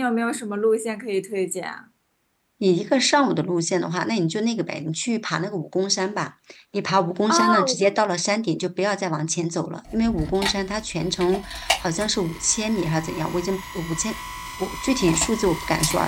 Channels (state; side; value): identical; both; correlation 1.00